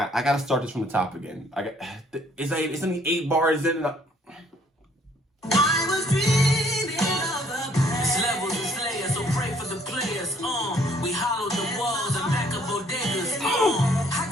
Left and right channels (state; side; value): normal; both; correlation 0.62